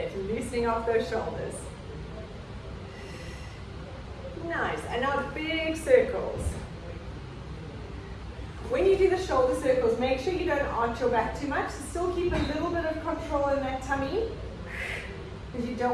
Loosening off those shoulders. Nice. And now big circles. When you do the shoulder circles, make sure you don't arch your back too much. Still keep a little bit of control in that tummy. Because you don't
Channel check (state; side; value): identical; both; correlation 1.00